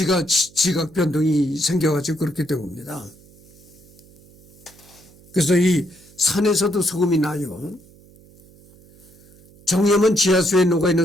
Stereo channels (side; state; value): right; noise; hum, 26 dB below the sound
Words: 변동이 생겨가지고 그렇게 된 겁니다. 그래서 이 산에서도 소금이 나요. 정염은 지하수에 녹아있는